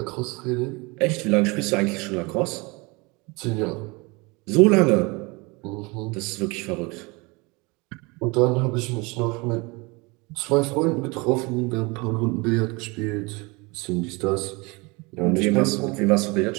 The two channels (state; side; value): quieter; left; 26.7 dB